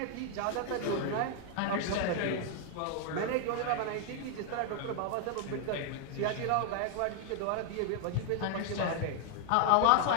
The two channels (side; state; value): both; different; correlation 0.00